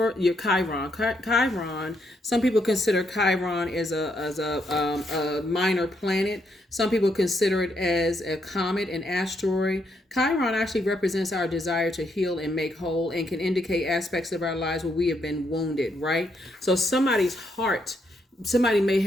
your Chiron. Chiron. Some people consider Chiron as a minor planet. Some people consider it as a comet, an asteroid. Chiron actually represents our desire to heal and make whole, and can indicate aspects of our lives where we have been wounded. Right. So somebody's heart. Somebody may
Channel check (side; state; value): both; normal; correlation 0.77